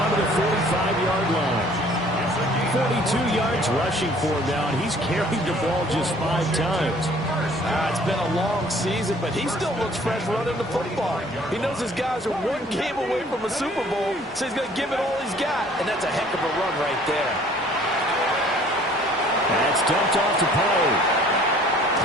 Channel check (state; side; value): normal; both; correlation 0.55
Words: to the 45-yard line. 42 yards rushing for him now, and he's carried the ball just 5 times. It's been a long season, but he still looks fresh running the football. He knows his guys are 1 game away from a Super Bowl, so he's going to give it all he's got, and that's a heck of a run right there. That's dumped off to Pollard.